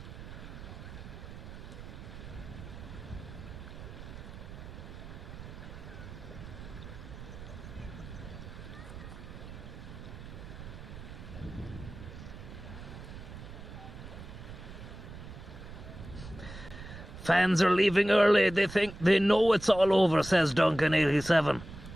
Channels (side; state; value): right; noise; rumble, 13 dB below the sound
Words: Fans are leaving early. They know it's all over, says Duncan 87.